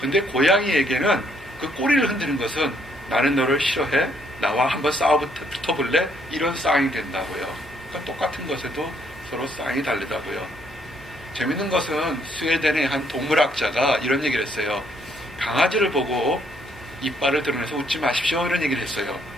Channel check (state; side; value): normal; both; correlation 0.69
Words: 근데 고양이에게는 그 꼬리를 흔드는 것은 나는 너를 싫어해? 나와 한번 붙어볼래? 이런 싸움이 된다고요. 그러니까 똑같은 것에도 서로 싸움이 다르다고요. 재밌는 것은 스웨덴의 한 동물학자가 이런 얘기를 했어요. 강아지를 보고 이빨을 드러내서 웃지 마십시오, 이런 얘기를 했어요.